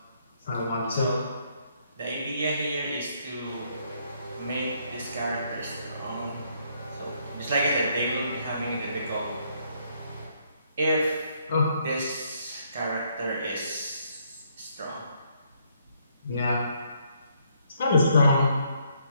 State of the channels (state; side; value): inverted; both; correlation -0.71